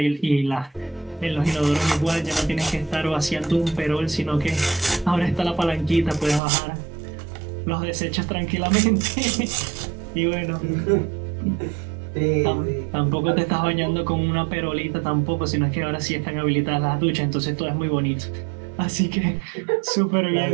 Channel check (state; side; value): drops out; left; at 6.4 s